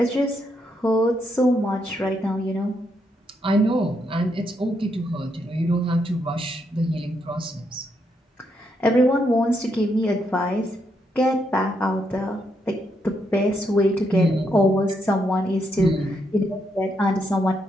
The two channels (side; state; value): both; normal; correlation 0.78